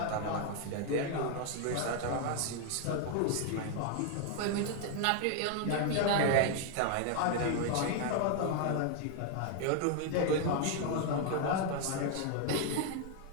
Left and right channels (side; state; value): both; different; correlation 0.00